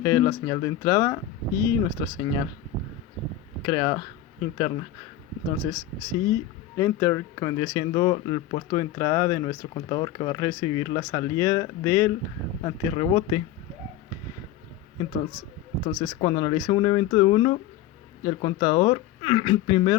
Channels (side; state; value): right; quieter; 11.4 dB